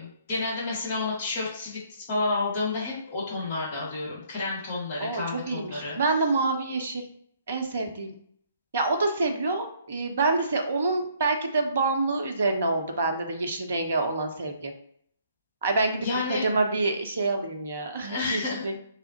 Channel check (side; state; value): both; inverted; correlation -0.65